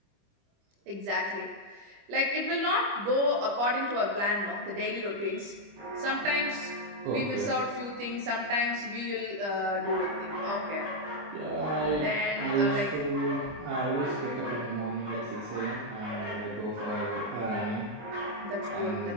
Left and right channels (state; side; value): late; left; 25 ms